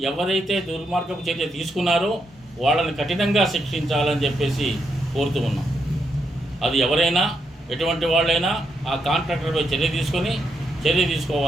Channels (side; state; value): both; normal; correlation 0.80